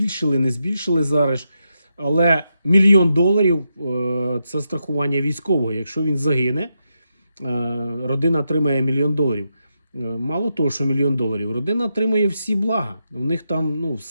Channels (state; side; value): inverted; both; correlation -0.85